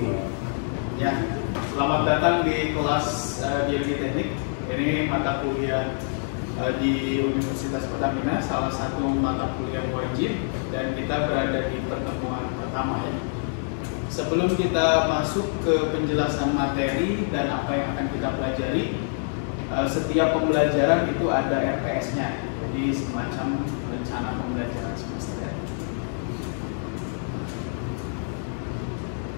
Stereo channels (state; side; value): silent; right; 61 dB below the other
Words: Ya, selamat datang di kelas Biologi Teknik. Ini mata kuliah di Universitas Pertamina, salah satu mata kuliah wajib, dan kita berada di pertemuan pertama ya. Sebelum kita masuk ke penjelasan materi dan apa yang akan kita pelajari, setiap pembelajaran itu ada RPS-nya. Jadi semacam rencana pembelajaran semester ya.